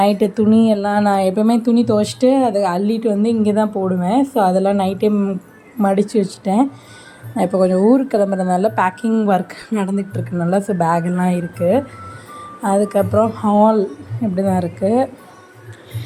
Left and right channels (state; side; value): identical; both; correlation 1.00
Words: துணி எல்லாம் நான் எப்போவுமே துணி துவைச்சிட்டு அதை அள்ளிட்டு வந்து இங்கே தான் போடுவேன். ஸோ அதெல்லாம் நைட்டே மடித்து வச்சுட்டேன். நான் இப்போ கொஞ்சம் ஊருக்கு கிளம்புறதுனால பேக்கிங் ஒர்க் நடந்துகிட்டு இருக்குனால ஸோ பேக்கெல்லாம் இருக்குது. அதுக்கப்புறம் ஹால் இப்படி தான் இருக்குது.